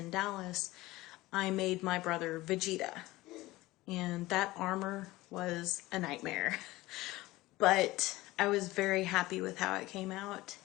Dallas. I made my brother Vegeta, and that armor was a nightmare. But I was very happy with how it came out,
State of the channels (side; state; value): right; quieter; 18.9 dB